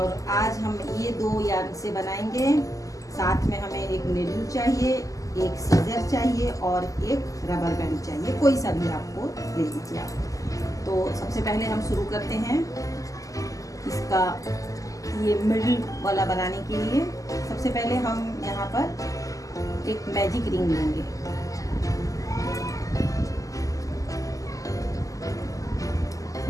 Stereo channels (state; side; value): late; right; 0.16 ms